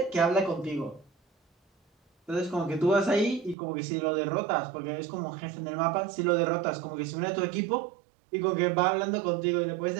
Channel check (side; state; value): left; drops out; at 3.6 s